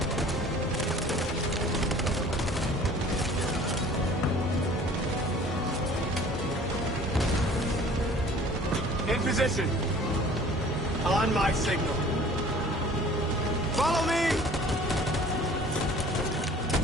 In position. On my signal. Follow me!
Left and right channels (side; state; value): both; normal; correlation 0.49